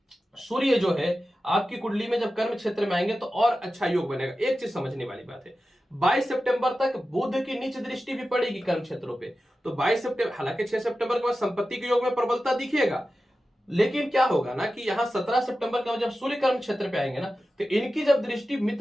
सूर्य जो है आपकी कुंडली में जब कर्म क्षेत्र में आएंगे तो और अच्छा योग बनेगा। एक चीज समझने वाली बात है, 22 सितंबर तक बुध की नीच दृष्टि भी पड़ेगी कर्म क्षेत्रों पे। तो 22 सितंबर, हालांकि 6 सितंबर के बाद संपत्ति के योग में प्रबलता दिखेगा, लेकिन क्या होगा ना कि यहां 17 सितंबर के बाद जब सूर्य कर्म क्षेत्र पे आएंगे ना तो इनकी जब दृष्टि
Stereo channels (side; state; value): both; normal; correlation 0.93